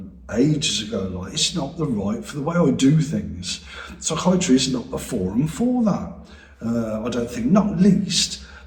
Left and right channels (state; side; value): identical; both; correlation 1.00